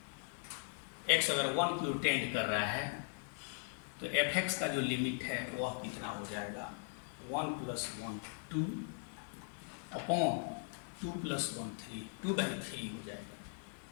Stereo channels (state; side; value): silent; right; 51 dB below the other